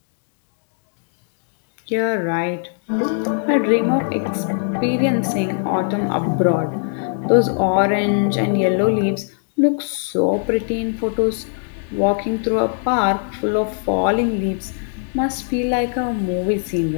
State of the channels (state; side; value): silent; right; 65 dB below the other